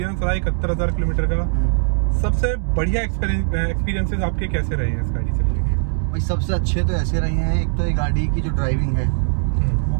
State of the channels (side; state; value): left; silent; digital silence